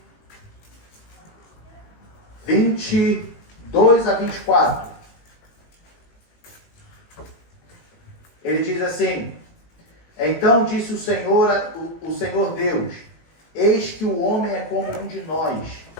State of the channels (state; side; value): late; right; 18 ms